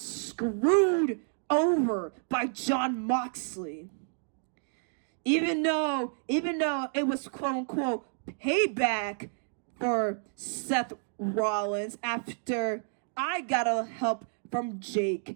over by Jon Moxley. Even though it was quote-unquote payback for Seth Rollins after I got a help from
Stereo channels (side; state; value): left; silent; digital silence